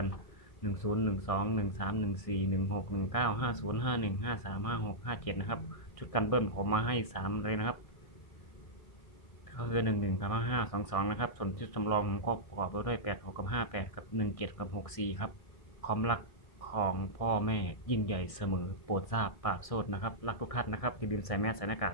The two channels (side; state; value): right; late; 1.6 ms